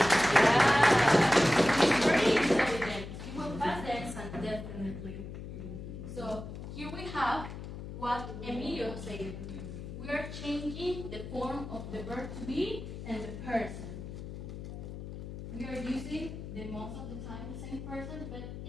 Yeah. He's very intelligent. He will pass the exam, definitely. So here we have what Emilio said. We are changing the form of the verb to be and the person. We are using the most of the time the same person, but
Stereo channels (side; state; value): left; noise; hum, 9 dB below the sound